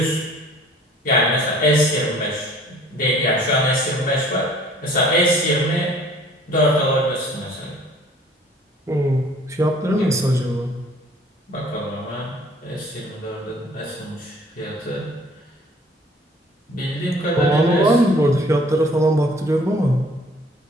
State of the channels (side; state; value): both; normal; correlation 0.54